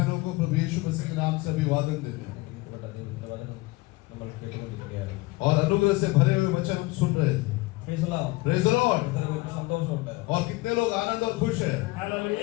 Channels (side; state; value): right; quieter; 21.7 dB